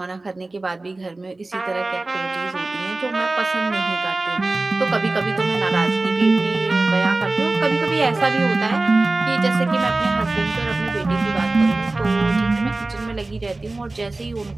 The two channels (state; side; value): quieter; left; 3.1 dB